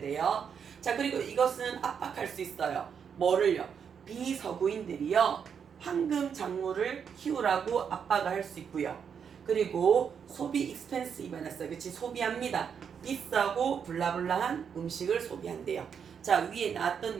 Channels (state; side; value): quieter; left; 7.2 dB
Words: 자, 그리고 이것은 압박할 수 있어요. 뭐를요? 비서구인들이요. 황금 작물을 키우라고 압박을 할 수 있고요. 그리고 소비 익스펜시브가 났어요. 그치? 소비합니다. 비싸고 블라블라한 음식을 소비한대요. 자, 위에 나왔던